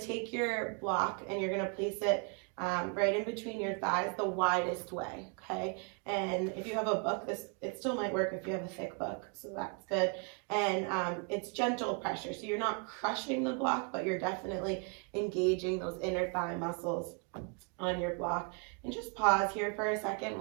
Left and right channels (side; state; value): left; quieter; 37.6 dB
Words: your block and you're gonna place it right in between your thighs the widest way, okay? And if you have a book, it still might work if you have a thick book, so that's good. And it's gentle pressure, so you're not crushing the block, but you're definitely engaging those inner thigh muscles on your block. And just pause here for a second.